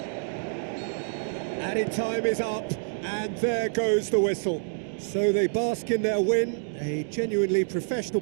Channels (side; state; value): left; silent; digital silence